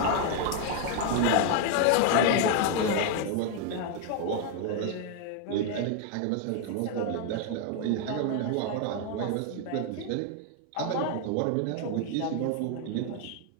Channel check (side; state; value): both; different; correlation 0.00